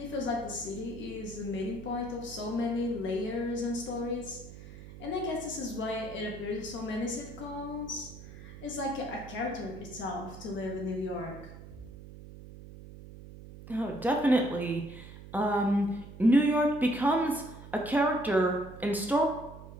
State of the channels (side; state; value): right; noise; hum, 15 dB below the sound